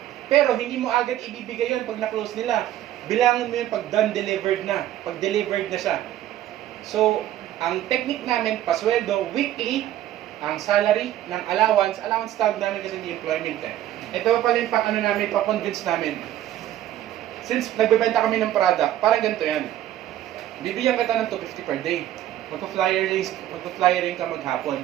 Pero hindi mo agad ibibigay yun pag na-close nila. Bilangin mo yun pag done, delivered na. Pag delivered na siya. So, Ang technique namin, pasweldo, weekly, ang salary ng allowance tawag namin kasi hindi employment eh. Ito pala yung pang ano namin, pa-convince namin. Since nagbebenta kami ng product, parang ganito yan. Bibigyan kita ng 250 per day. Magpa-flyering ka maghapon,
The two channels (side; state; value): left; quieter; 12.7 dB